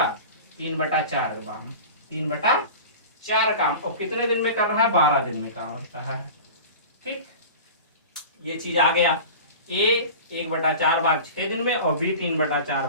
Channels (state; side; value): inverted; both; correlation -0.35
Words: 3/4 काम, 3/4 काम। और कितने दिन में कर रहा है, 12 दिन में काम कर रहा है। ठीक, ये चीज आ गया। ए 1/4 भाग 6 दिन में और बी 3/4